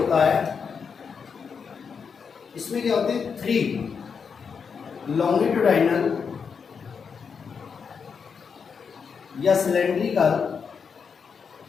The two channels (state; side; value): quieter; right; 6.1 dB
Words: है इसमें क्या होते हैं, 3 लॉन्गिट्यूडाइनल या सिलेंड्रिकल